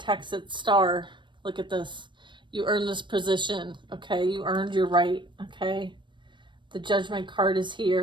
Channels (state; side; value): late; left; 0.23 ms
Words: its star. Look at this. You earned this position. Okay. You earned your right. Okay. The Judgment card is